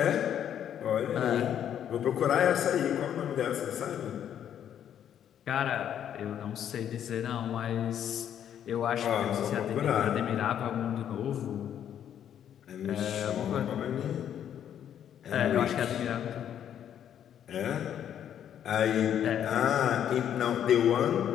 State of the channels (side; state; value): right; quieter; 9.7 dB